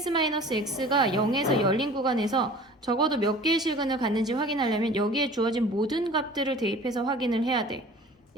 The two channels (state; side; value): normal; both; correlation 0.44